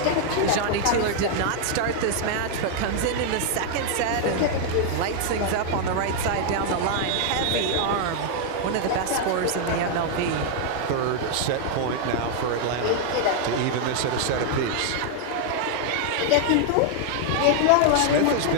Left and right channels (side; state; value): both; different; correlation 0.00